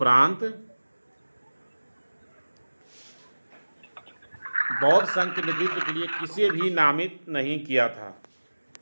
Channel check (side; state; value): both; inverted; correlation -1.00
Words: बौद्ध संघ के नेतृत्व के लिए किसे भी नामित नहीं किया था।